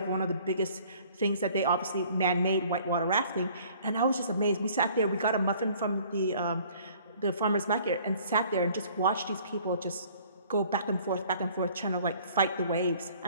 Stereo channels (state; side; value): inverted; both; correlation -0.55